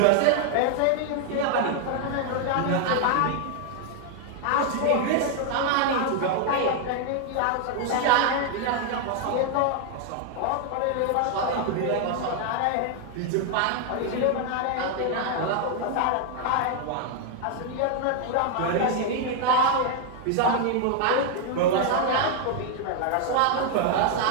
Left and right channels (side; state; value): both; different; correlation 0.00